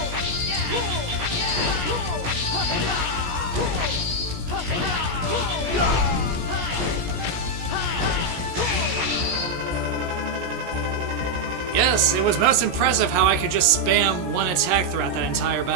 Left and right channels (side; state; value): left; late; 17 ms